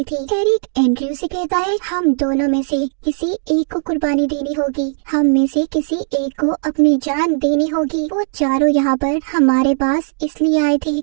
थी। एरिक एंड्रयू से कहता है हम दोनों में से किसी एक को कुर्बानी देनी होगी, हम में से किसी एक को अपनी जान देनी होगी। वो चारों यहाँ पर हमारे पास इसलिए आए थे,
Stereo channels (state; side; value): silent; left; 68 dB below the other